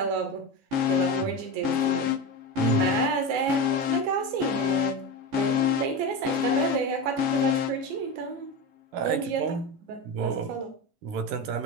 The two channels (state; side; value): late; left; 15 ms